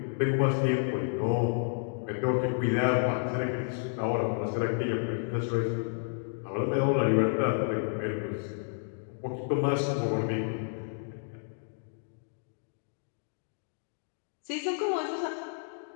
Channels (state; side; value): silent; right; digital silence